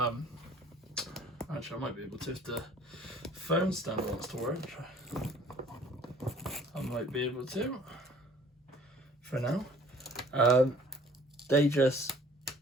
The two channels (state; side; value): normal; both; correlation 0.54